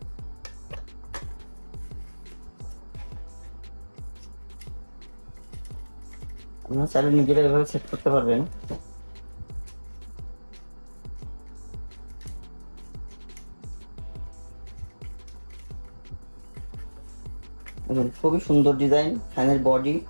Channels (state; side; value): inverted; both; correlation -1.00